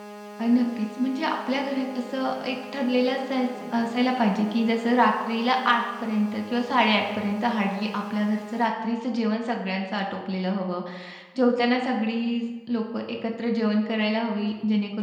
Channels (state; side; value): identical; both; correlation 1.00